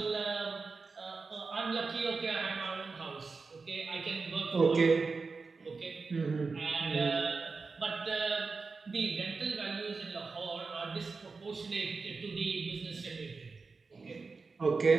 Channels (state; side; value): quieter; left; 4.4 dB